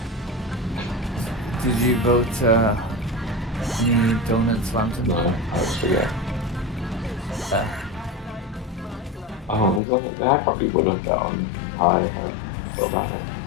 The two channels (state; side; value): drops out; right; at 9.8 s